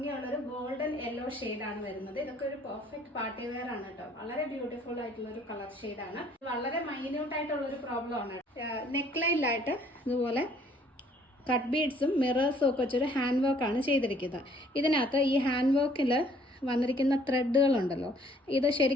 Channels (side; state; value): both; normal; correlation 0.60